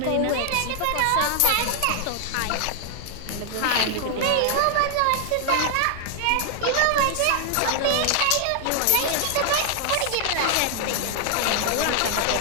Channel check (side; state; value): both; different; correlation 0.00